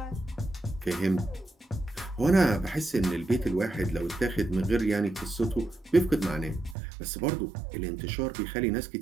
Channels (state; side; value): drops out; left; at 6.8 s